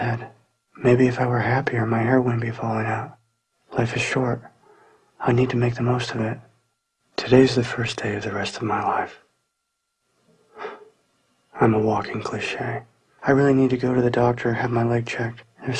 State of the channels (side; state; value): both; identical; correlation 1.00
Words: Maybe if I were happier, my hair wouldn't be falling out. Life is short. I need to make the most of it. Today's the first day of the rest of my life. I'm a walking cliche. I really need to go to the doctor, have my leg checked. There's